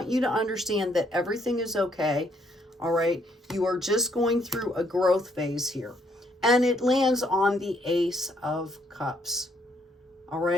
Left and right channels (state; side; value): normal; both; correlation 0.70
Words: you to understand that everything is okay. All right. You are just going through a growth phase here. And it lands on the Ace of Cups. All